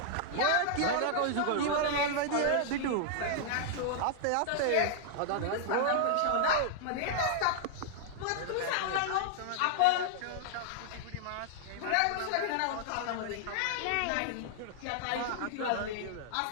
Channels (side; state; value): both; different; correlation -0.01